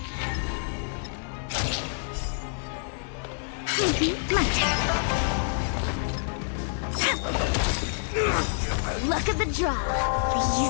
My turn. Luck of the draw,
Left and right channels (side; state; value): right; silent; 56 dB below the other